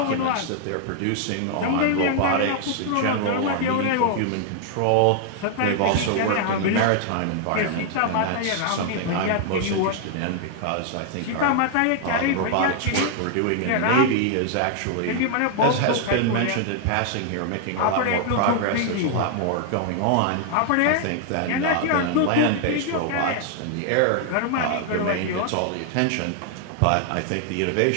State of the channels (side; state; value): both; different; correlation 0.00